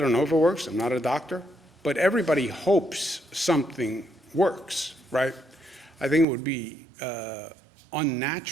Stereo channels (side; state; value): left; drops out; at 6.2 s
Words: know if it works, I'm not a doctor, but everybody hopes something works, right? I think it would be